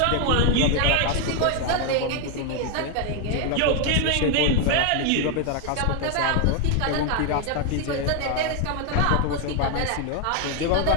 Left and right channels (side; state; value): both; different; correlation 0.01